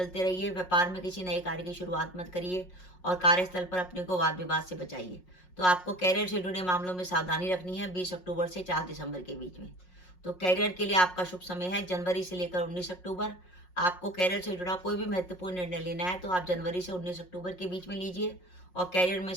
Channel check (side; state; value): right; late; 5.5 ms